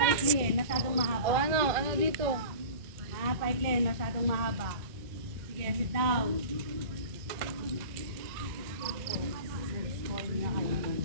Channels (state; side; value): late; left; 1.9 ms